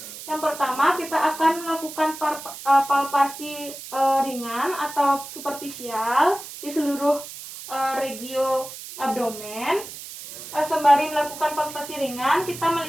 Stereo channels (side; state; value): right; noise; hiss, 12 dB below the sound